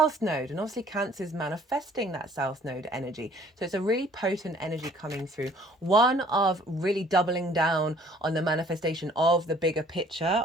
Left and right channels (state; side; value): normal; both; correlation 0.56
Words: Node, and obviously Cancer is manifesting that South Node energy. So it's a really potent energy coming through. One of really doubling down on the manifestation of the bigger picture